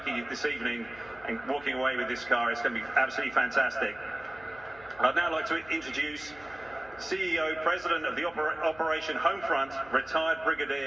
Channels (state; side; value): noise; left; hum, 23 dB below the sound